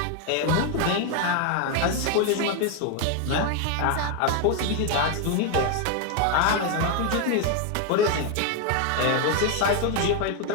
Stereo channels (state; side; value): different; both; correlation 0.01